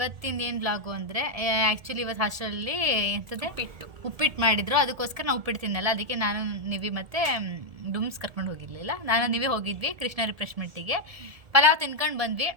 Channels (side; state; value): left; late; 1.7 ms